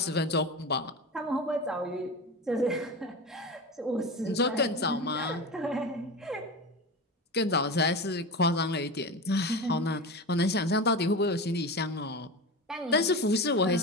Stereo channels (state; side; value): normal; both; correlation 0.25